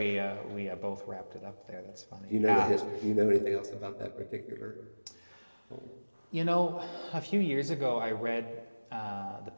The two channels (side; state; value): both; inverted; correlation -1.00